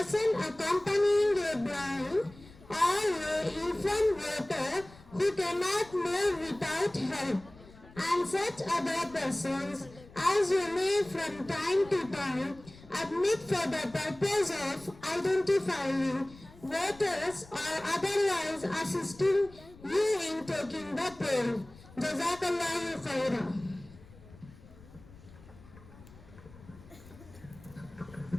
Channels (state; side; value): noise; left; rumble, 21 dB below the sound